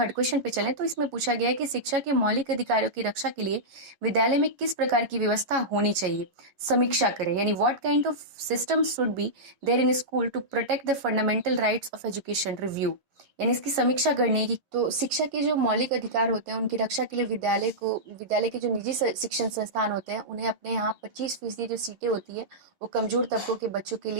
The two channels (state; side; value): late; left; 11 ms